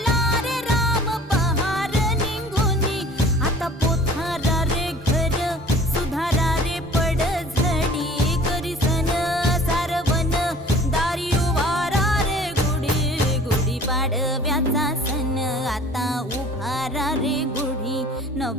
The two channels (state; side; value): normal; both; correlation 0.48